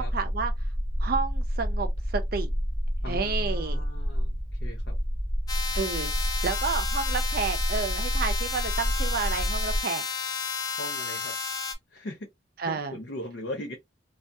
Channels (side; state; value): both; normal; correlation 0.47